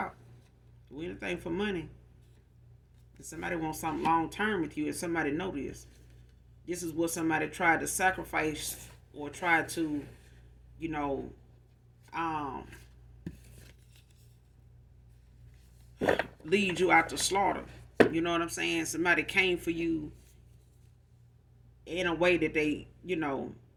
do anything for money. If somebody wants something long term with you, and somebody know this is what somebody tried to sacrifice or tried to, lead you out to slaughter. You know what I'm saying? Somebody came for you in a way that they,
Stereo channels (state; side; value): identical; both; correlation 1.00